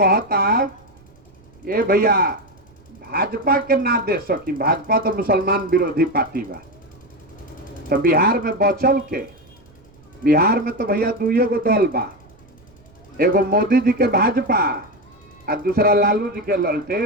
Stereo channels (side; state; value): right; noise; rumble, 28 dB below the sound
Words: ये भैया भाजपा के ना दे सकी, भाजपा तो मुसलमान विरोधी पार्टी बा। तो बिहार में बचल के, बिहार में तो भैया दुइये गो दल बा, एगो मोदी जी के भाजपा और दूसरा लालू जी के